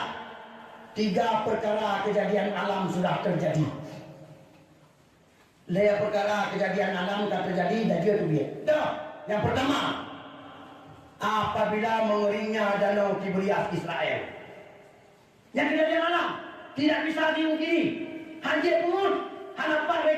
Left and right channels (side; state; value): both; identical; correlation 1.00